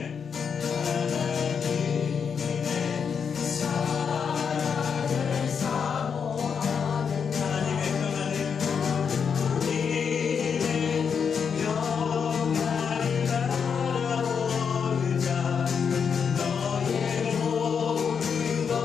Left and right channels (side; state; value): right; quieter; 6.6 dB